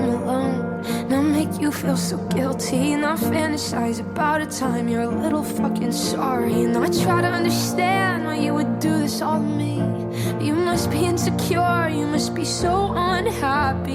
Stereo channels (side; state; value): both; identical; correlation 1.00